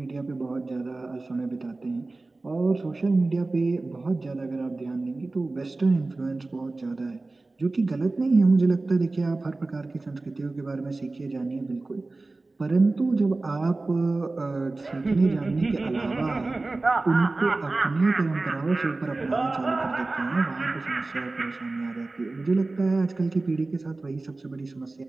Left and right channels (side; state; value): left; quieter; 3.3 dB